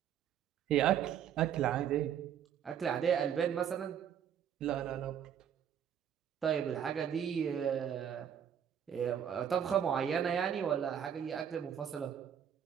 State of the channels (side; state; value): left; quieter; 9.0 dB